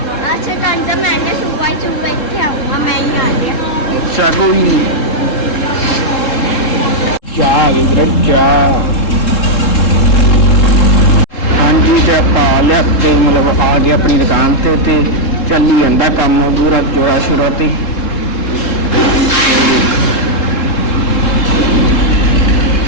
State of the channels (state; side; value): late; right; 3.7 ms